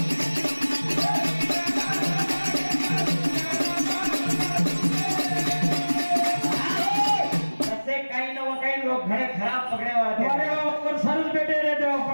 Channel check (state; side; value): inverted; both; correlation -1.00